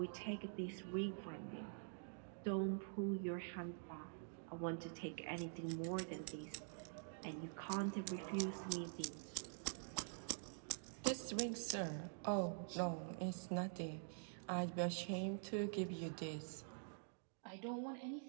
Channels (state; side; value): silent; left; digital silence